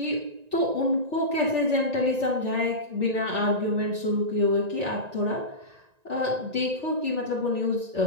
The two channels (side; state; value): left; late; 1.9 ms